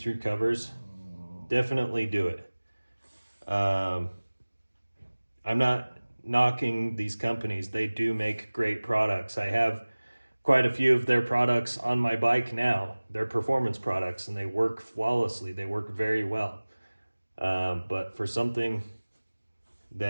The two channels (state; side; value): inverted; both; correlation -1.00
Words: covers, definitely do it. I'm not knocking these companies. They do make great products. I have quite a few of their products on my bike now. They're performance products and they work flawlessly. They work very well. But for something